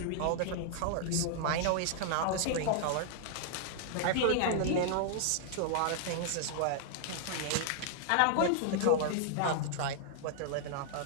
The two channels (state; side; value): different; both; correlation -0.01